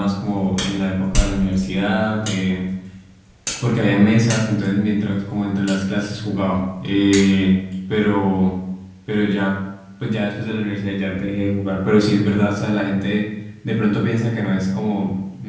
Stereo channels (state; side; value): identical; both; correlation 1.00